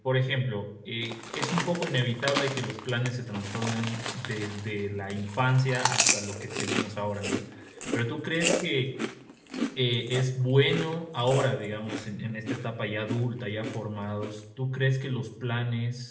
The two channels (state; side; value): identical; both; correlation 1.00